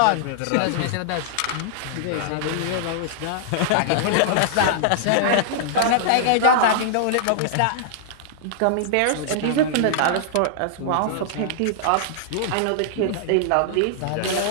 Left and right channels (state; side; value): different; both; correlation -0.01